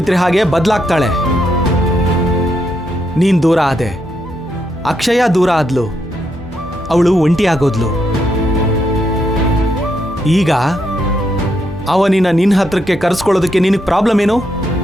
ಹಾಗೆ ಬದಲಾಗ್ತಾಳೆ. ನೀನ್ ದೂರ ಆದೆ, ಅಕ್ಷಯ ದೂರ ಆದ್ಲು, ಅವಳು ಒಂಟಿಯಾಗೋದ್ಲು. ಈಗ ಅವನಿನ ನಿನ್ನ ಹತ್ರಕ್ಕೆ ಕರೆಸ್ಕೊಳ್ಳೋದಕ್ಕೆ ನಿನಗೆ ಪ್ರಾಬ್ಲಮ್ ಏನು?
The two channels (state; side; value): normal; both; correlation 0.79